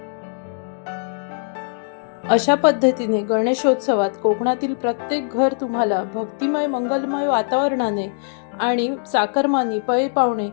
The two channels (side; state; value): right; silent; digital silence